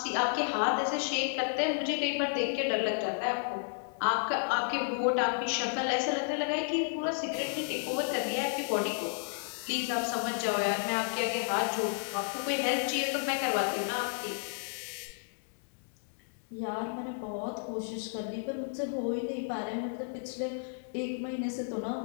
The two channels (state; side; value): silent; right; 56 dB below the other